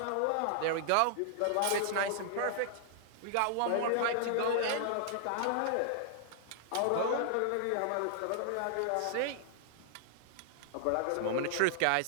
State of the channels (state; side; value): different; both; correlation -0.01